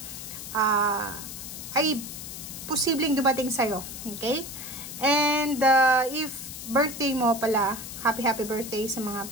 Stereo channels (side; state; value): left; noise; hiss, 10 dB below the sound